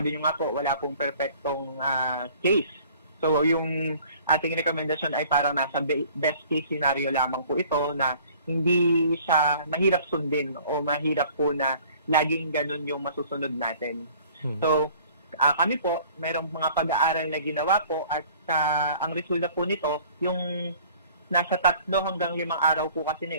niyo nga po, wala pong perfectong case. So yung ating rekomendasyon ay parang nasa best case scenario lamang po ito na hindi siya mahirap sundin o mahirap po na laging ganun yung masusunod natin. So kami po, mayroong mga pag-aaral na ginawa po at ang resulta po nito, yung nasa 3 hanggang 5 araw po kasi na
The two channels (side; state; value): both; inverted; correlation -0.53